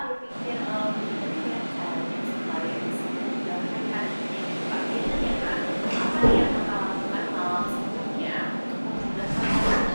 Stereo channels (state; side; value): inverted; both; correlation -1.00